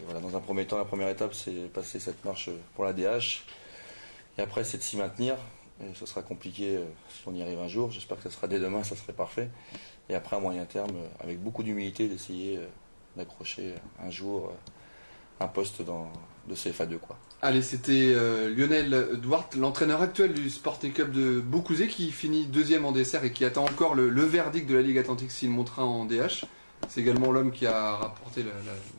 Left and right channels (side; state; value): both; inverted; correlation -1.00